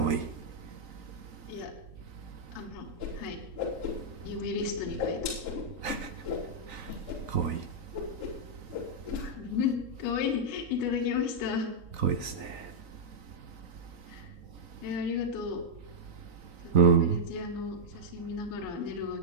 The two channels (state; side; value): late; left; 3.9 ms